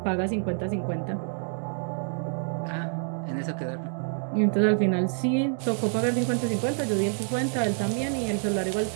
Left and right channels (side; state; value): left; silent; 60 dB below the other